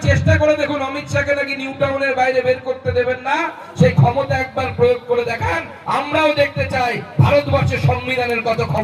চেষ্টা করে দেখুন, অমিত শাহকে নাকি নিউ টাউনের বাইরে বের করতে দেবেন না, সেই ক্ষমতা একবার প্রয়োগ করে দেখান। আমরাও দেখতে চাই ভারতবর্ষের সংবিধানের কত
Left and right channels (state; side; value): identical; both; correlation 1.00